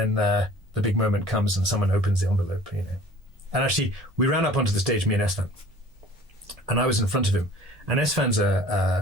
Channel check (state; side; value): normal; both; correlation 0.48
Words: the big moment comes and someone opens the envelope, And actually, we ran up onto the stage, me and Esfan, and I was in front of him. And Esfan's